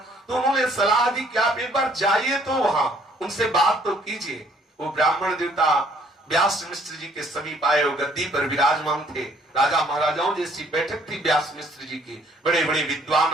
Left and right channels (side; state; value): both; normal; correlation 0.63